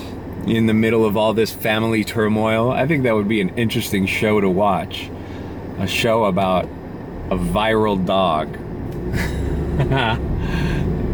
in the middle of all this family turmoil. I think that would be an interesting show to watch. A show about a viral dog.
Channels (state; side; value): identical; both; correlation 1.00